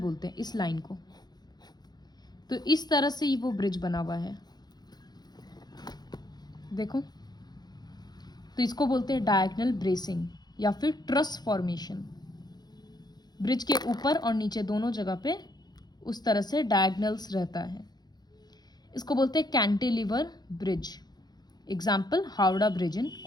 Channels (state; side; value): late; right; 0.20 ms